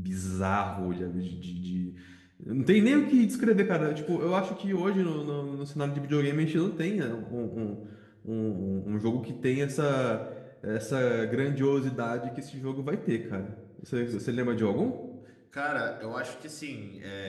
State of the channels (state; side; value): identical; both; correlation 1.00